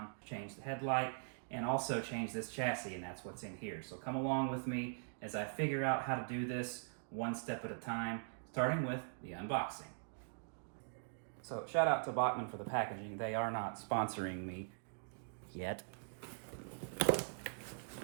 change the headlight, and also change this chassis, and that's what's in here. So come along with me as I figure out how to do this one step at a time, starting with the unboxing. So shout out to Bachmann for the packaging. They are not sponsoring me yet.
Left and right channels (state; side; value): silent; left; digital silence